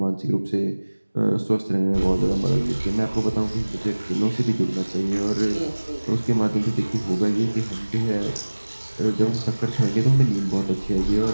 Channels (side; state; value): both; inverted; correlation -1.00